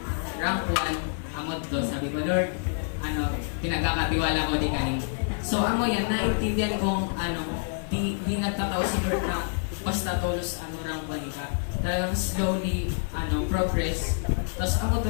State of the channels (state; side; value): silent; right; digital silence